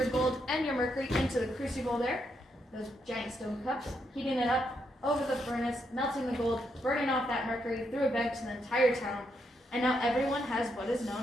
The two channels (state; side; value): normal; both; correlation 0.79